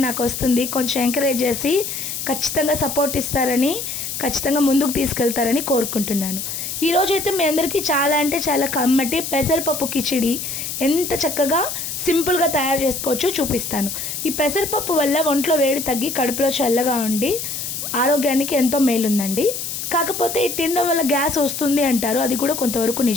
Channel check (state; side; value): noise; left; hiss, 5 dB below the sound